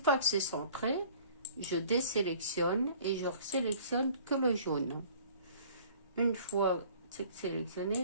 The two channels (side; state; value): both; inverted; correlation -0.51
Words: que c'est centré, je désélectionne et je sélectionne que le jaune. Une fois c'est